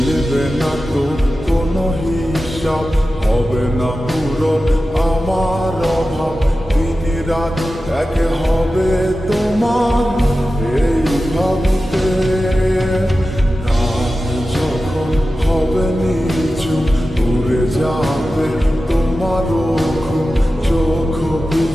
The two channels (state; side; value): normal; both; correlation 0.93